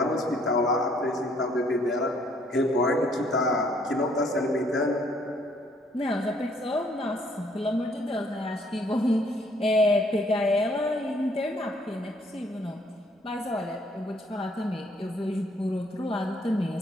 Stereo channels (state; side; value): normal; both; correlation 0.64